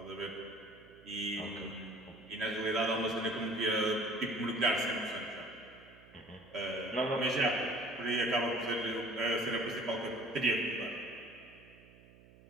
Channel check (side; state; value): right; noise; hum, 23 dB below the sound